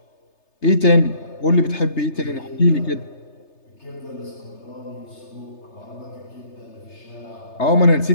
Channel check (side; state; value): right; late; 3.3 ms